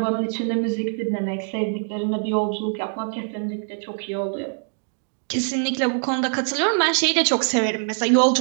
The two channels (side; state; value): left; silent; 63 dB below the other